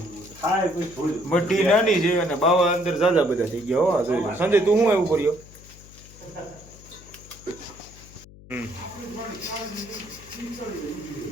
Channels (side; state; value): left; noise; hum, 20 dB below the sound